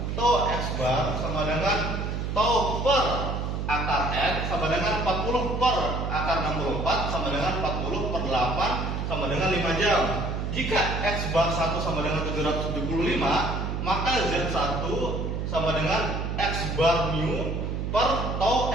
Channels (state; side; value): noise; right; hum, 2 dB below the sound